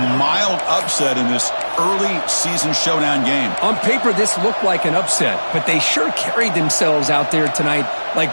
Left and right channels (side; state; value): both; inverted; correlation -1.00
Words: mild upset in this early season showdown game. On paper, this looked like an upset, but they sure carried themselves out there tonight